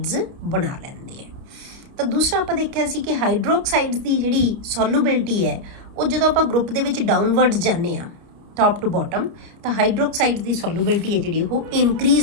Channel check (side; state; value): left; late; 30 ms